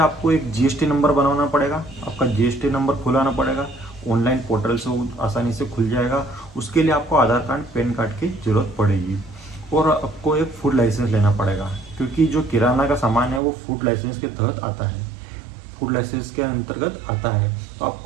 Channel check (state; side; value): drops out; left; at 13.4 s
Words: एक जीएसटी नंबर बनाना पड़ेगा, आपका जीएसटी नंबर खुलाना पड़ेगा। ऑनलाइन पोर्टल से वो आसानी से खुल जाएगा। उसके लिए आपको आधार कार्ड, पैन कार्ड की जरूरत पड़ेगी और आपको एक फूड लाइसेंस लेना पड़ेगा, क्योंकि जो किराना का सामान है वो फूड लाइसेंस के तहत आता है, फूड लाइसेंस के अंतर्गत आता है। तो